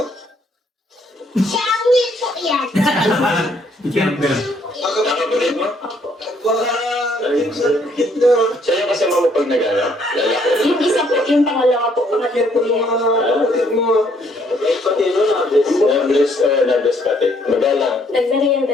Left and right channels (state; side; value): normal; both; correlation 0.67